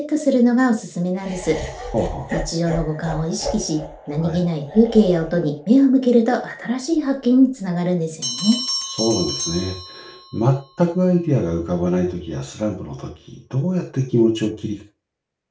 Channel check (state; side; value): identical; both; correlation 1.00